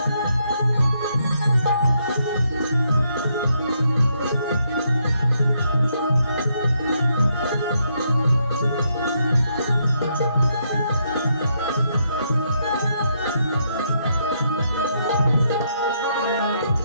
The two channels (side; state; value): both; inverted; correlation -0.76